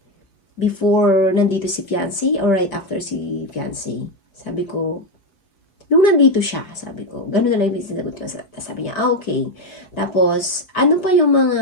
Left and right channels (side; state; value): right; late; 5.1 ms